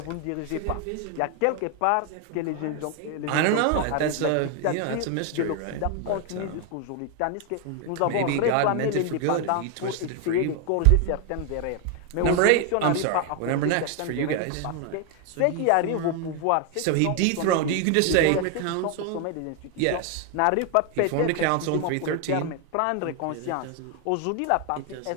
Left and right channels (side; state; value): both; different; correlation 0.01